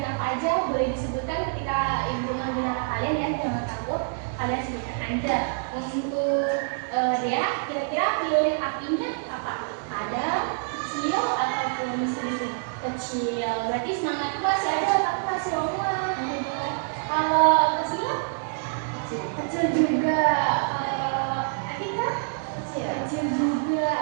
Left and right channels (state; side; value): silent; left; digital silence